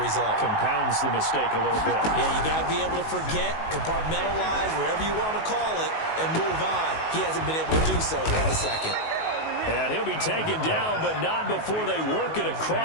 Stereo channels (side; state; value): right; late; 19 ms